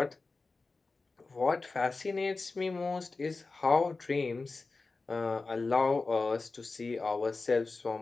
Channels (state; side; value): quieter; right; 3.8 dB